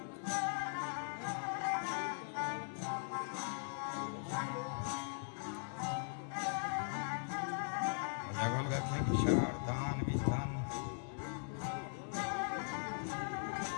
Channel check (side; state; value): right; silent; digital silence